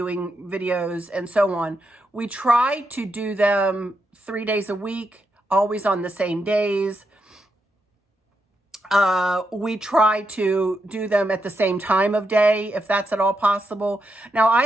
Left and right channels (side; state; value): both; normal; correlation 0.83